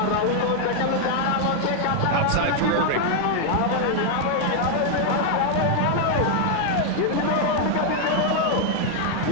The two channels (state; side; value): different; both; correlation 0.00